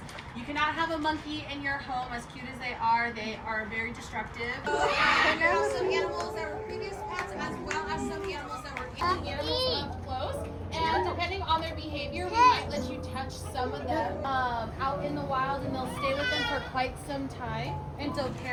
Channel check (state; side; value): identical; both; correlation 1.00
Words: you cannot have a monkey in your home, as cute as they are very destructive. So we have some animals that were previous pets, as well as some animals that were animals up close. And depending on their behavior, we might let you touch some of them out in the wild, and they'll stay with them for quite some time. And so